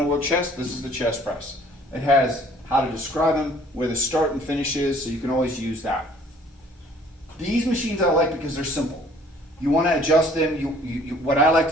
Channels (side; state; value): both; normal; correlation 0.56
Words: to work chest? This is the chest press. It has how to describe them, where the start and finish is, so you can always use that. These machines I like because they're simple. You want to adjust them. What I like